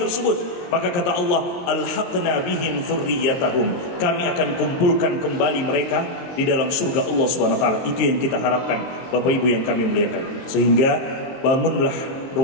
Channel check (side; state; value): right; late; 23 ms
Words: tersebut. Maka kata Allah, alhaqna bihim dzurriyyatahum, kami akan kumpulkan kembali mereka di dalam surga Allah Subhanahu wa taala. Itu yang kita harapkan Bapak Ibu yang kami muliakan. Sehingga bangunlah